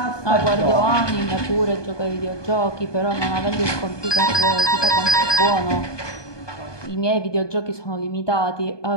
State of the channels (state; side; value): late; right; 1.2 ms